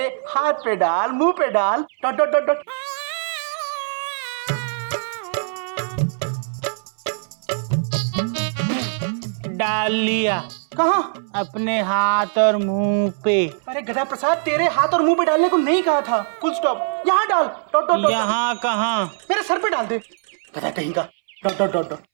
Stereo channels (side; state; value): left; silent; 62 dB below the other